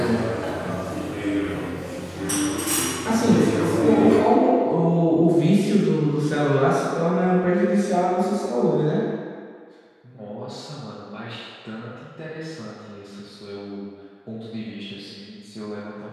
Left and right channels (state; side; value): identical; both; correlation 1.00